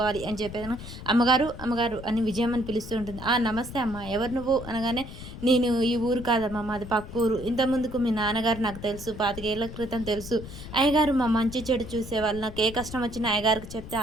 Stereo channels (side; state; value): left; noise; rumble, 12 dB below the sound